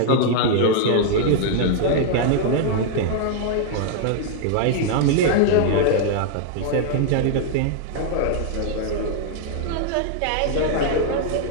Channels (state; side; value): different; both; correlation 0.00